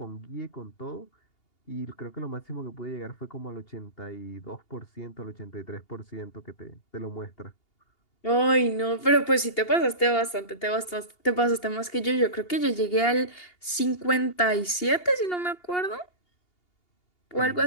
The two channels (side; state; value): right; late; 2.8 ms